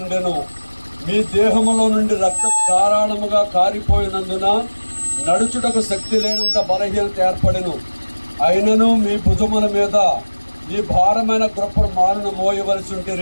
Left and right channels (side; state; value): both; inverted; correlation -1.00